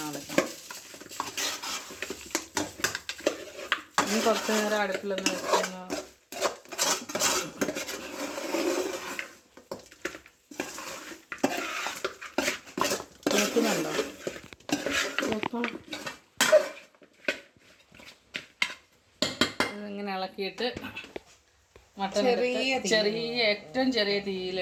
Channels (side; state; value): both; identical; correlation 1.00